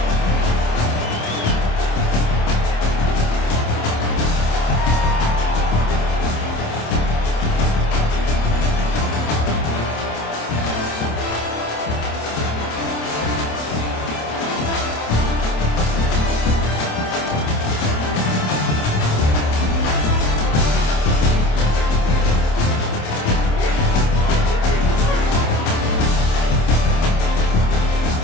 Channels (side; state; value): right; late; 27 ms